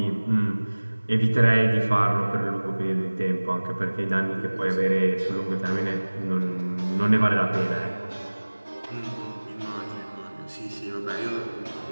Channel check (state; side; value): inverted; both; correlation -1.00